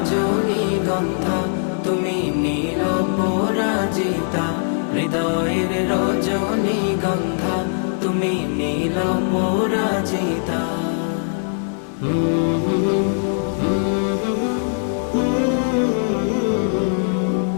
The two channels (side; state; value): right; silent; 58 dB below the other